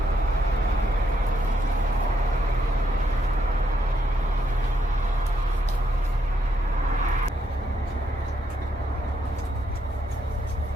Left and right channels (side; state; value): both; normal; correlation 0.76